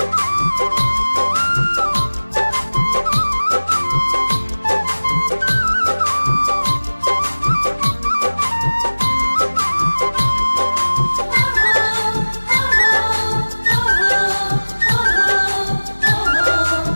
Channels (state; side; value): inverted; both; correlation -1.00